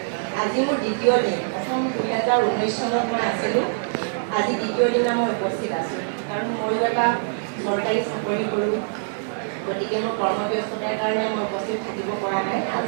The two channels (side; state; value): left; silent; digital silence